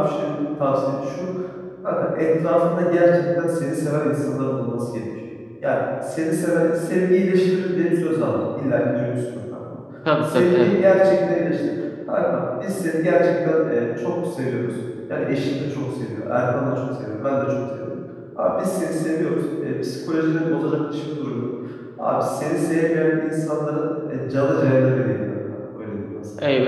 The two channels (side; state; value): both; identical; correlation 1.00